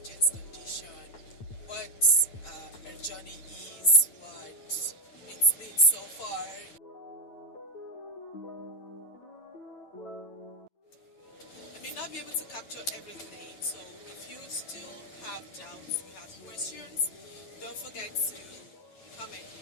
Jane's condition, what her journey is, what it's been so far. I may not be able to capture everything, so if you still have doubts, you have questions, don't forget to comment.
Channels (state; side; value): late; right; 9.3 ms